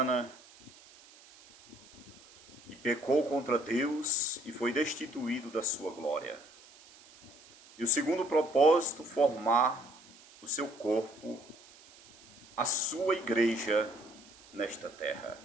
que pecou contra Deus e foi destituído da sua glória. E o segundo propósito, formar o seu corpo, a sua igreja nesta terra.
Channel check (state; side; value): noise; right; hiss, 23 dB below the sound